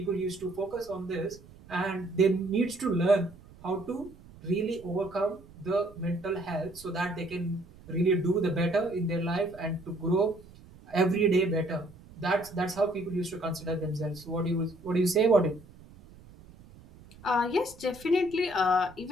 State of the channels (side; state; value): right; noise; rumble, 21 dB below the sound